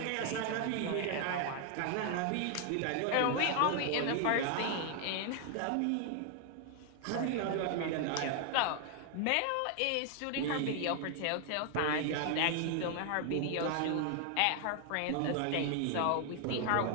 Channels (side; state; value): both; different; correlation 0.00